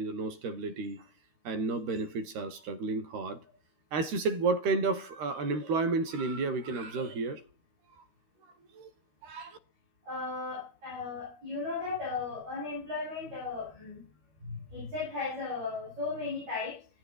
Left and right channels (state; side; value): late; left; 13 ms